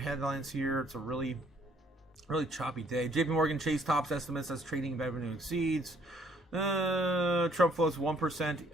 here? It's a really Really choppy day. JP Morgan Chase tops estimates as trading revenue exceeds. Trump floats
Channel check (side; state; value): both; normal; correlation 0.64